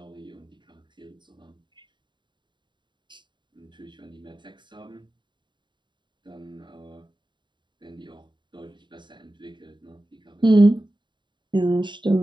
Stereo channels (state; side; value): late; left; 0.23 ms